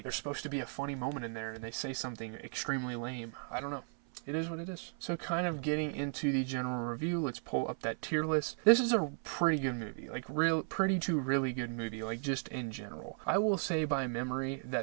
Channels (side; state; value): left; silent; 54 dB below the other